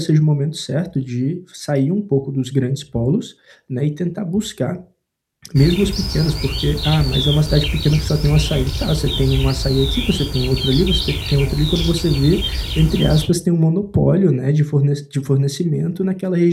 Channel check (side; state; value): both; identical; correlation 1.00